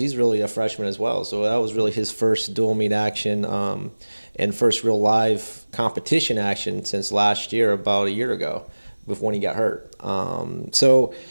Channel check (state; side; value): inverted; both; correlation -1.00